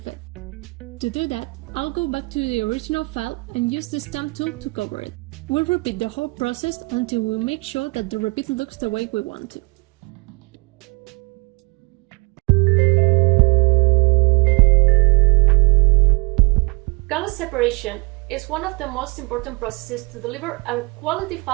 it. To do that, I'll go back to the original file and use the stamp tool to cover it. We'll repeat the whole process until we make sure that the repeat looks the way we want to. Color separation is one of the most important processes to deliver a quality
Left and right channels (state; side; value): quieter; left; 28.3 dB